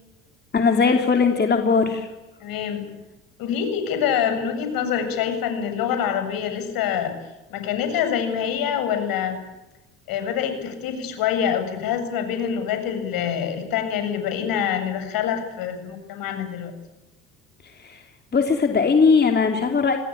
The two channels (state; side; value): quieter; right; 6.1 dB